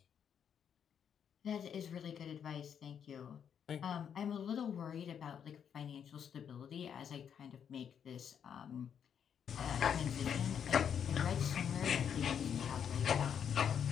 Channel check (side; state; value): right; quieter; 8.1 dB